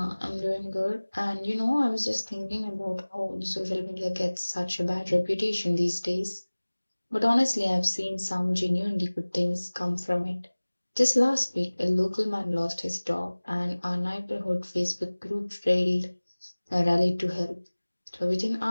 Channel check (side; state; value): both; inverted; correlation -1.00